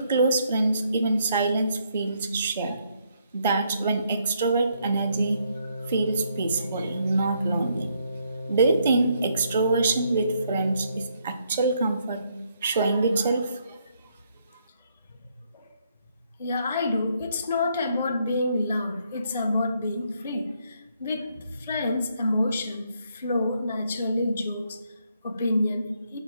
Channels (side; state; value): both; inverted; correlation -0.73